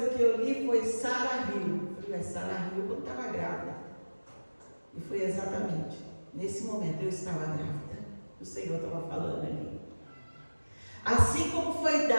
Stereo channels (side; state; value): both; inverted; correlation -1.00